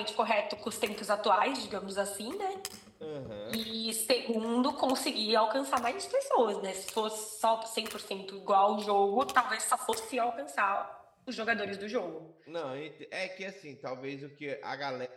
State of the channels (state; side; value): identical; both; correlation 1.00